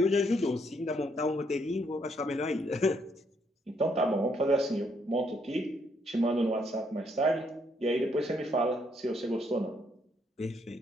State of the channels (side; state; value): both; normal; correlation 0.72